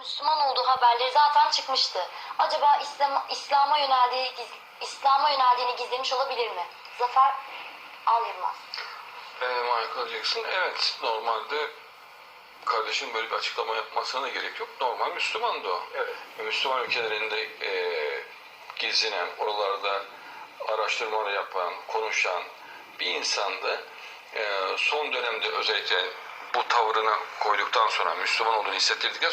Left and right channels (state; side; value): identical; both; correlation 1.00